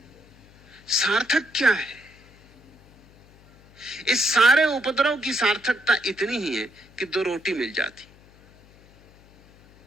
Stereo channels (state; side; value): noise; left; hum, 27 dB below the sound